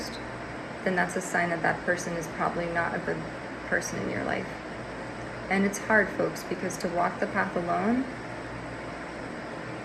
then that's a sign that that person is probably not a good person in your life. And it's hard, folks, because to walk the path alone,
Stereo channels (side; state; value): both; identical; correlation 1.00